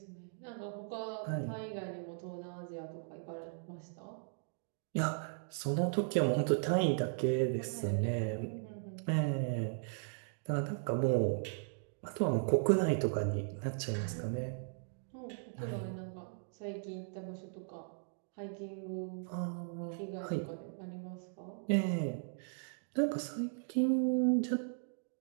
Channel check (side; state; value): left; silent; digital silence